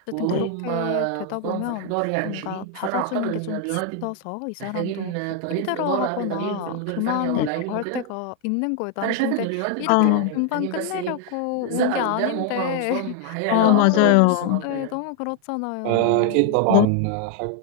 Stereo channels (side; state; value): both; different; correlation 0.00